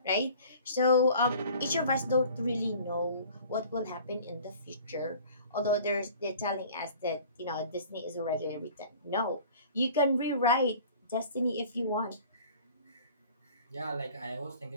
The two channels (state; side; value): inverted; both; correlation -0.47